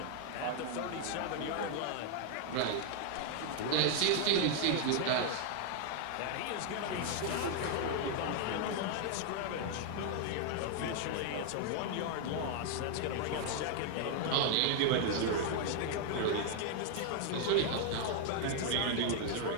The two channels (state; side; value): different; both; correlation 0.00